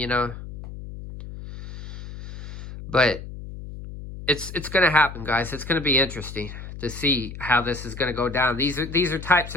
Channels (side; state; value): left; noise; hum, 11 dB below the sound